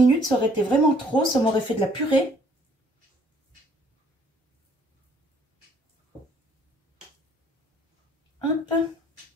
ça aurait été vraiment trop. Ça m'aurait fait de la purée. Hop.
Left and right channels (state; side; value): normal; both; correlation 0.61